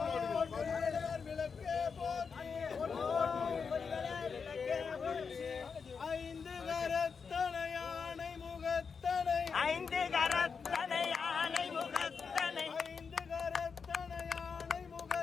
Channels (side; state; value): right; quieter; 5.7 dB